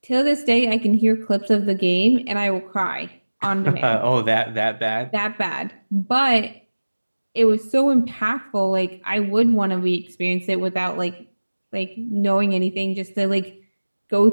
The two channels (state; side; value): inverted; both; correlation -1.00